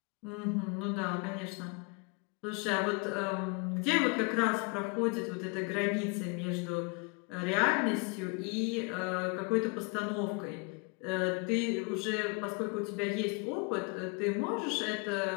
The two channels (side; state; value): right; quieter; 31.8 dB